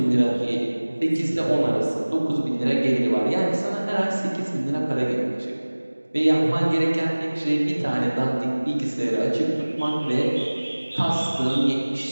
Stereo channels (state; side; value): inverted; both; correlation -1.00